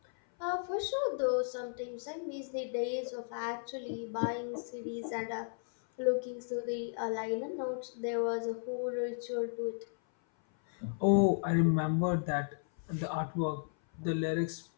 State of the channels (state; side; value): silent; right; 55 dB below the other